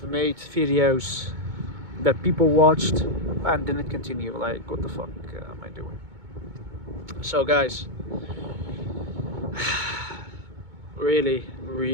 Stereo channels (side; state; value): left; late; 2.2 ms